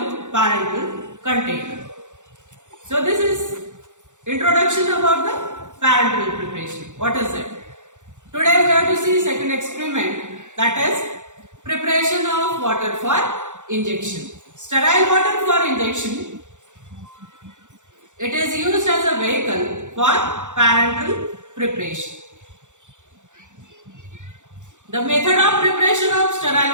parenteral container. So this is introduction about the parenteral preparation. What is it? Today we have to see second experiment, that is preparation of water for injection. Sterile water for injection. It is used as a vehicle for parenteral preparation. The method of preparation of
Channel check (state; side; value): late; left; 0.85 ms